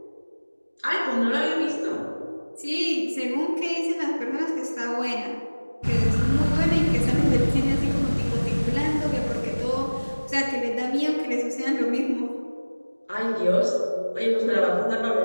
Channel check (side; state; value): both; inverted; correlation -1.00